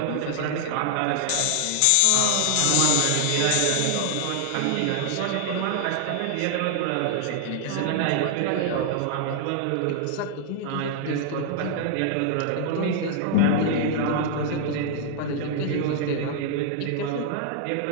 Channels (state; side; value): different; both; correlation -0.01